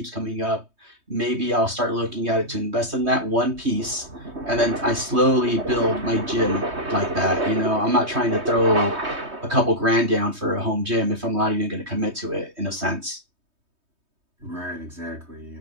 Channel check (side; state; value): left; late; 3.2 ms